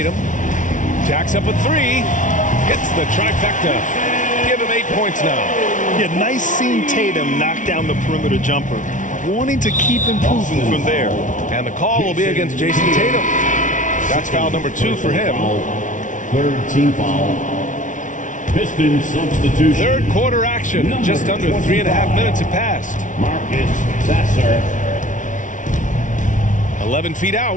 Jacks up a 3. Hits the trifecta. Give him 8 points now. Yeah, nice seeing Tatum knock down the perimeter jumper. Wanting to keep improving from there. And the call will be against Jason Tatum. That's foul number 2 for him. 3rd team foul. Pistons substitution. Third quarter action. Just under 3.5 minutes have passed. Marcus Sasser. 11 feet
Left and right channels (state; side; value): late; right; 0.37 ms